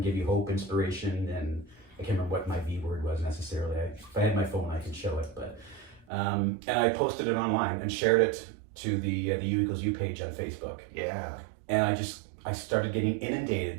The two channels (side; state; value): left; drops out; at 6.1 s